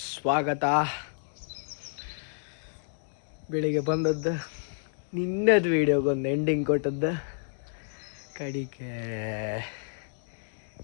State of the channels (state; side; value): silent; right; digital silence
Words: ಬೆಳಿಗ್ಗೆ ಬಂದದ್ದು, ನಿನ್ನದು ವೀಡಿಯೋಗೊಂದು ಎಂಡಿಂಗ್ ಕೊಟ್ಟದ್ದು, ಕಡಿಕೆ